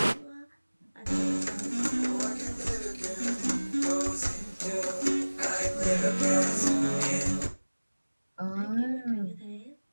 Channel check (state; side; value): inverted; both; correlation -1.00